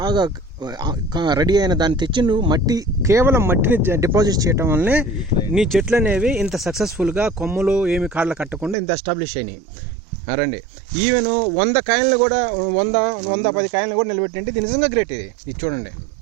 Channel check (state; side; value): drops out; left; at 8.8 s